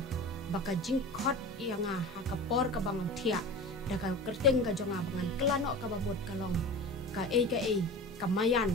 baka jing khot yanga haka por ka bangam thia da ka kerteng ka jonga bangan kelano ka bamod kalong ka kamayan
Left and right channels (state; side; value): normal; both; correlation 0.33